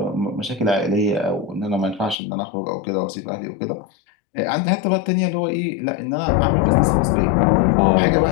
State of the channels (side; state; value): right; drops out; at 2.1 s